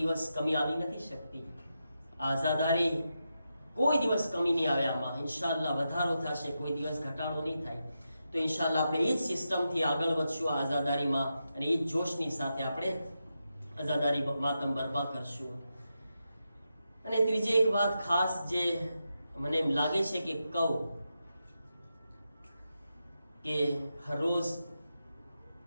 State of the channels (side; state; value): both; inverted; correlation -0.87